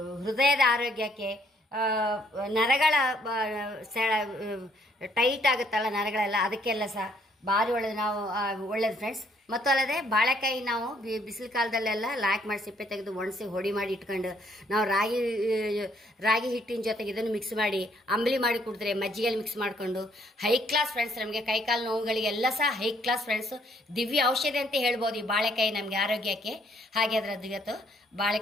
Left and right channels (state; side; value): normal; both; correlation 0.67